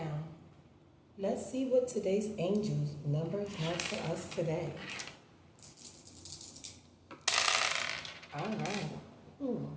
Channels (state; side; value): identical; both; correlation 1.00